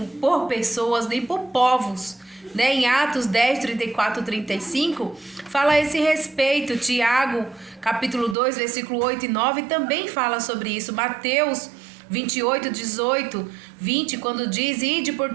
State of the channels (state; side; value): drops out; left; at 8.3 s